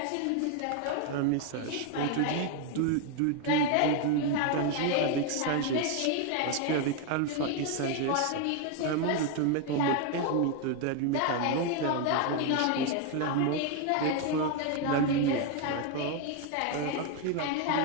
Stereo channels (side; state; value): both; different; correlation 0.01